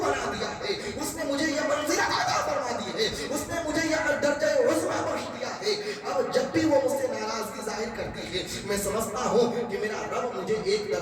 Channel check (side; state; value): both; identical; correlation 1.00